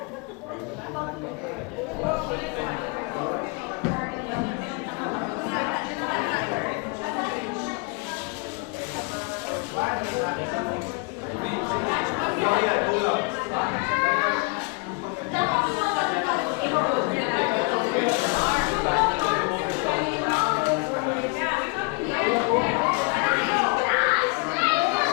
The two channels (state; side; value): quieter; right; 30.6 dB